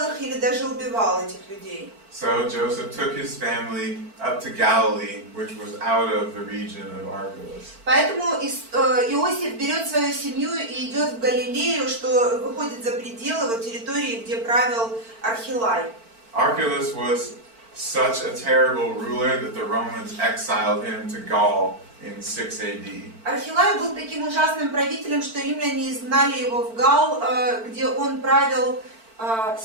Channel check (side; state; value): left; late; 4.5 ms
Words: их или даже убивал этих людей. So Joseph took his family up to Galilee, which was out of the region of Archelaus. Поэтому Иосиф берет свою семью и идет в Галилею, что выходит за пределы вот территории, где правил Архилай. Archelaus was such a terrible ruler that the Romans exiled him to Gaul in 6 AD. Архилай был таким ужасным правителем, что римляне изгнали его в Гал, где он правил